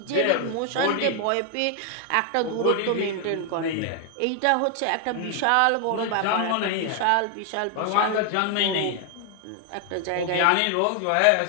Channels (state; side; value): different; both; correlation 0.00